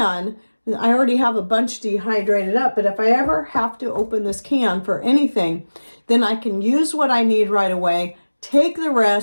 I already have a bunch dehydrated up, but if I ever have to open this can for anything, then I can use what I need right away, take the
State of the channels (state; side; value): inverted; both; correlation -1.00